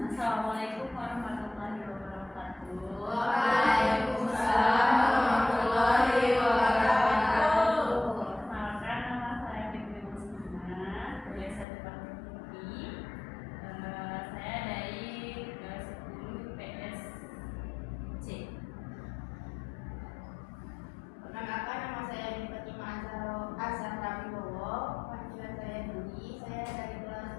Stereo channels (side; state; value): right; drops out; at 11.7 s